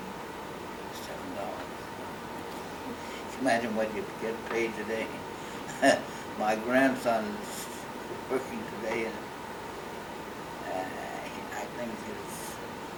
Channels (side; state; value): both; identical; correlation 1.00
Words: $7. Imagine what you get paid today. My grandson is working today, and I think he's